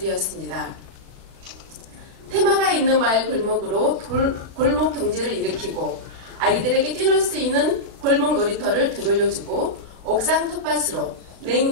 테마가 있는 마을 골목으로 골목 경제를 일으키고, 아이들에게 뛰놀 수 있는 골목 놀이터를 되돌려주고, 옥상 텃밭으로 냉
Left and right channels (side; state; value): left; late; 36 ms